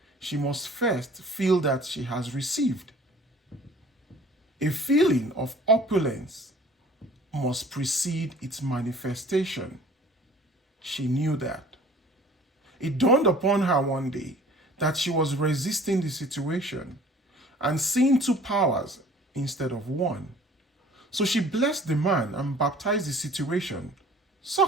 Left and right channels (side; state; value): both; normal; correlation 0.50